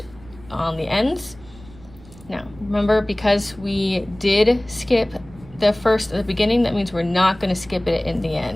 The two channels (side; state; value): right; noise; rumble, 21 dB below the sound